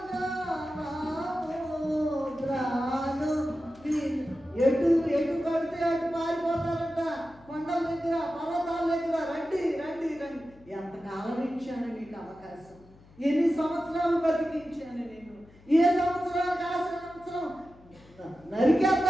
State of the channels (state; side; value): noise; left; hum, 25 dB below the sound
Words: ఎటు ఎటు కడితే అటు పారిపోతారంట. కొండల దగ్గర, పర్వతాల దగ్గర రండి రండి రండి. ఎంతకాలం ఇచ్చాను నీకు అవకాశం, ఎన్ని సంవత్సరాలు బతికించాను నేను. ఏ సంవత్సరానికి ఆ సంవత్సరం